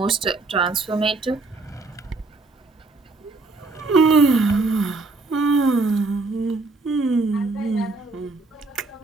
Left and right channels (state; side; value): quieter; left; 3.5 dB